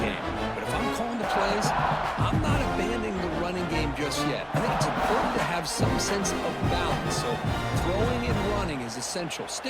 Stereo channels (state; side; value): identical; both; correlation 1.00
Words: But if I'm calling the plays, I'm not abandoning the running game just yet. I think it's important to have some sense of balance. So throwing and running is essential.